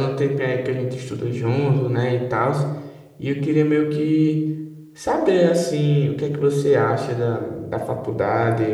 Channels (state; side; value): identical; both; correlation 1.00